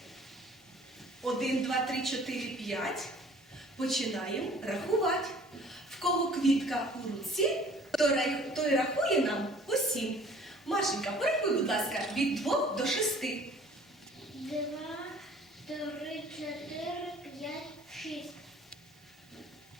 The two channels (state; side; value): normal; both; correlation 0.52